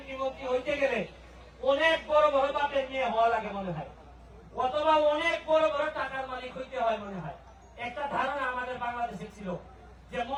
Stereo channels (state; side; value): identical; both; correlation 1.00